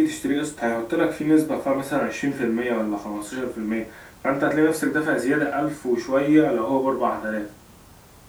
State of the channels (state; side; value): identical; both; correlation 1.00